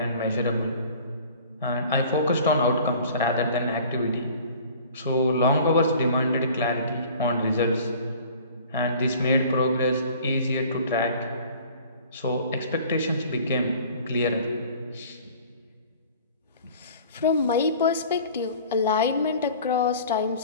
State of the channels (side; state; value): both; inverted; correlation -0.47